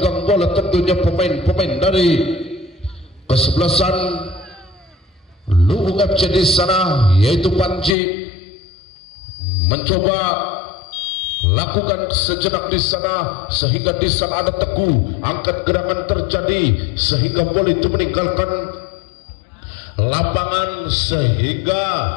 bola tentunya pemain-pemain dari kesebelasan Luwung FC di sana yaitu Panji mencoba lakukan sejenak di sana, sehingga di sana ada Teguh, angkat gerangan terjadi sehingga bola itu meninggalkan lapangan, sehingga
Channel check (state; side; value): drops out; right; at 8.0 s